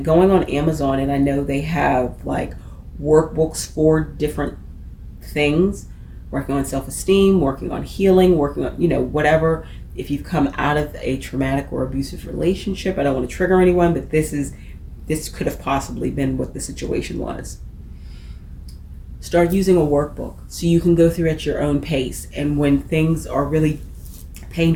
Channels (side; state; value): both; identical; correlation 1.00